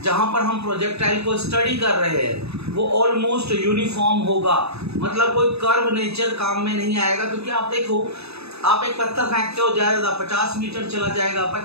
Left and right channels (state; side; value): late; left; 0.79 ms